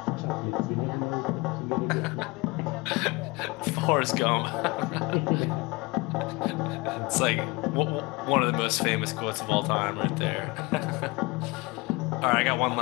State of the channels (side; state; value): right; quieter; 24.9 dB